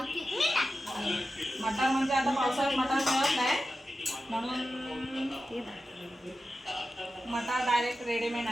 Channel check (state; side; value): normal; both; correlation 0.92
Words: मटार म्हणजे आता पावसाळ्यात मटार मिळत नाही म्हणून मटार डायरेक्ट रेडीमेड